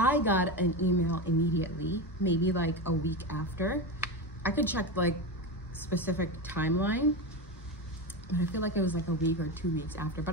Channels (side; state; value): both; normal; correlation 0.19